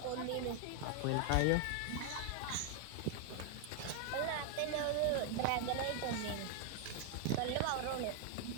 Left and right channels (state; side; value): different; both; correlation 0.00